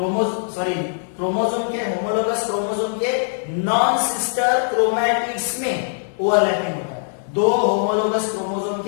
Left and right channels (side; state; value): right; silent; 57 dB below the other